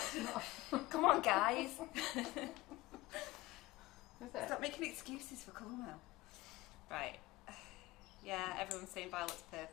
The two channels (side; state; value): right; quieter; 19.6 dB